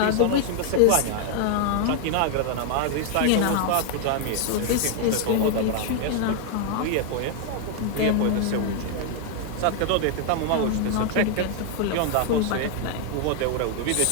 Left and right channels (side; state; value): both; different; correlation 0.00